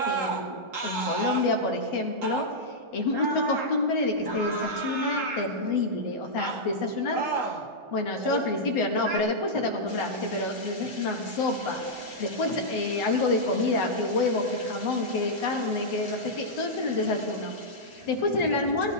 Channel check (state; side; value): late; left; 1.4 ms